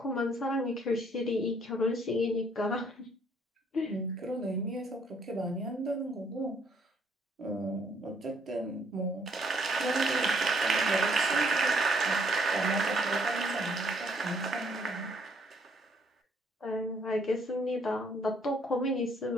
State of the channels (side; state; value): both; normal; correlation 0.66